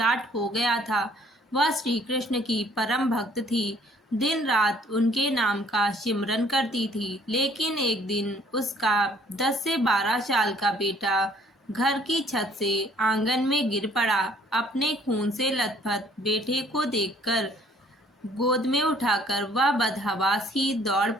हो गया था। वह श्री कृष्ण की परम भक्त थी। दिन रात उनके नाम का सिमरन करती थी। लेकिन एक दिन उसका 10 से 12 साल का बेटा घर की छत से आंगन में गिर पड़ा। अपने खून से लथपथ बेटे को देखकर गोद में उठाकर वह बदहवास ही दौड़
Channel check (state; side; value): normal; both; correlation 0.59